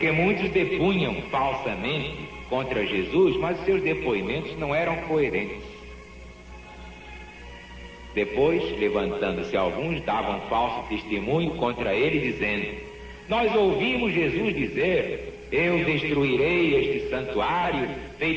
muitos depunham falsamente contra Jesus, mas seus depoimentos não eram coerentes. Depois, levantando-se alguns, davam falso testemunho contra ele, dizendo: nós ouvimos Jesus dizer: eu destruirei este santuário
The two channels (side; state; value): both; identical; correlation 1.00